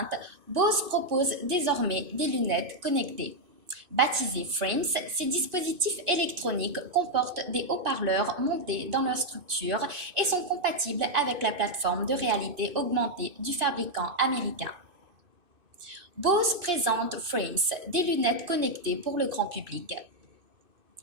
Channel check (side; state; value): left; late; 2.6 ms